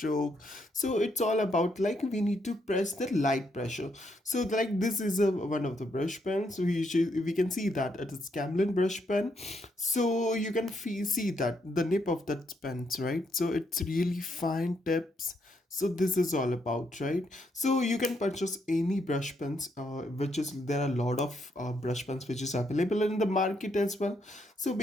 So it's all about like we need to press the light pressure. So like this is a one of the brush pens. We can see that it is Camlin brush pen. So you can see that the nip of that pens, right? So it's really fine tips. So this is all about, right? So you can purchase any brush pens, which is there are a lot of brush pens which is available in the market as well. So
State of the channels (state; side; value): normal; both; correlation 0.76